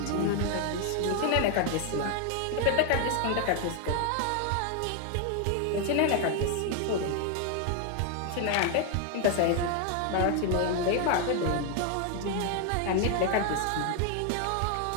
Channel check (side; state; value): both; different; correlation 0.01